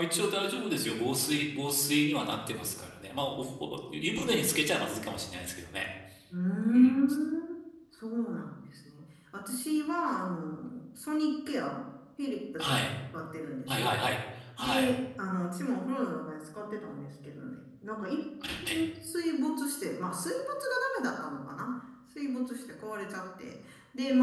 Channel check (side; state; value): both; identical; correlation 1.00